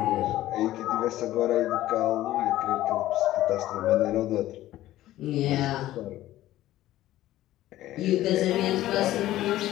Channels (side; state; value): right; quieter; 14.7 dB